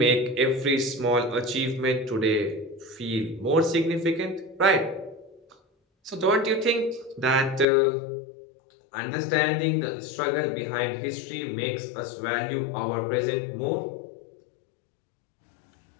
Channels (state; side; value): drops out; right; at 7.7 s